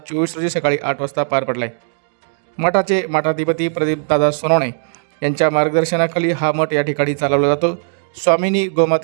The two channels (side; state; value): left; silent; digital silence